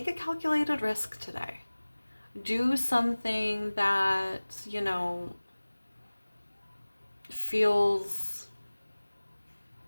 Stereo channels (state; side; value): inverted; both; correlation -1.00